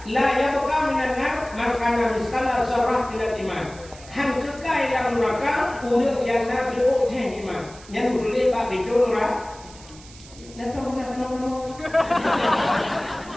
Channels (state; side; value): noise; right; hiss, 20 dB below the sound